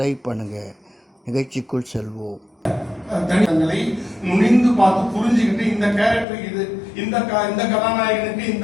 பண்ணுங்கள். நிகழ்ச்சிக்குள் செல்வோம். தனித்தங்களை நுழைந்து பார்த்து புரிஞ்சுக்கிட்டு இந்த கேரக்டர் இது, இந்த கதாநாயகனுக்கு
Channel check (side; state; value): right; drops out; at 6.2 s